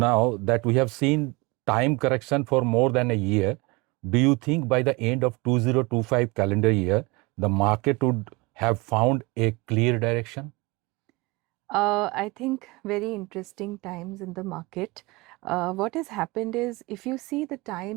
that we have seen time correction for more than a year, do you think by the end of 2025 calendar year, the market would have found a clear direction? I think very interesting times in the market. What has happened is, if you see the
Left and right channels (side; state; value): left; quieter; 25.4 dB